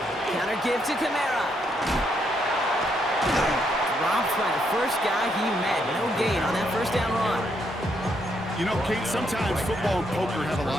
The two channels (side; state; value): both; normal; correlation 0.76